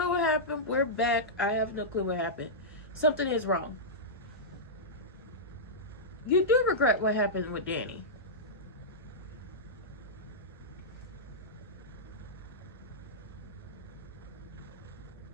what happened. We're back. I have no clue what happened. Something is wrong. You do regret what happened with Danny.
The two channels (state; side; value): normal; both; correlation -0.13